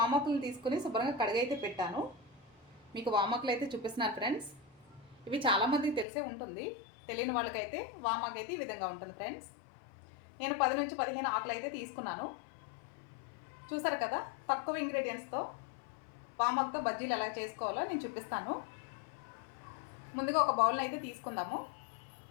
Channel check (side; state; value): right; drops out; at 6.1 s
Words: తీసుకుని శుభ్రంగా కడిగైతే పెట్టాను. మీకు వామాకులు అయితే చూపిస్తున్నాను ఫ్రెండ్స్. ఇవి చాలామందికి తెలిసే ఉంటుంది, తెలియని వాళ్ళకైతే వామాకు అయితే ఈ విధంగా ఉంటుంది ఫ్రెండ్స్. నేను 10 నుంచి 15 ఆకులు అయితే తీసుకున్నాను. చూసారు కదా, తక్కువ ఇంగ్రీడియంట్స్తో వామాకుతో బజ్జీలు ఎలా చేసుకోవాలో నేను చూపిస్తాను. ముందుగా ఒక బౌల్ని అయితే తీసుకుందాము.